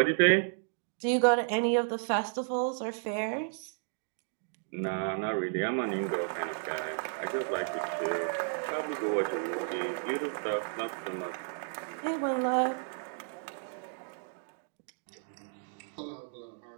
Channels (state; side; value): silent; left; 56 dB below the other